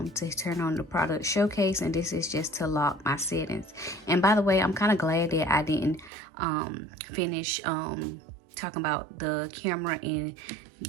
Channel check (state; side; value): drops out; left; at 6.1 s